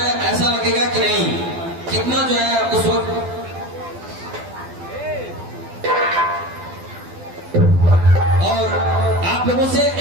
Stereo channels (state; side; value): late; left; 12 ms